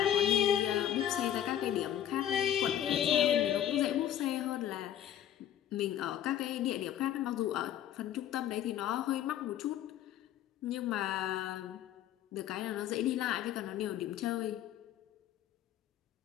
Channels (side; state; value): right; quieter; 11.0 dB